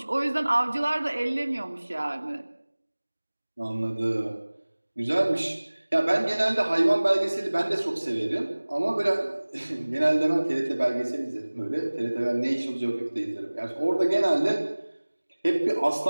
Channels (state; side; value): inverted; both; correlation -1.00